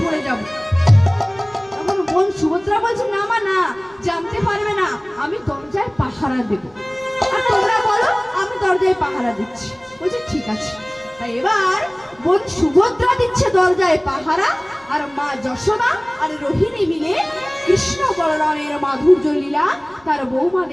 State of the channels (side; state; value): right; noise; rumble, 29 dB below the sound